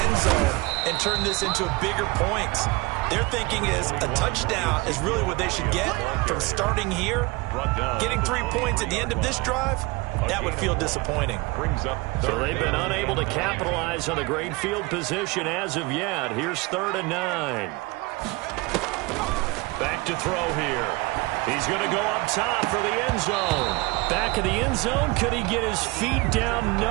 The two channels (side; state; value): left; quieter; 24.0 dB